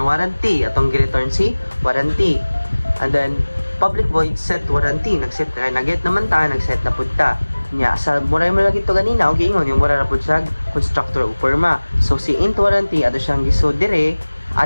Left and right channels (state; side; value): inverted; both; correlation -1.00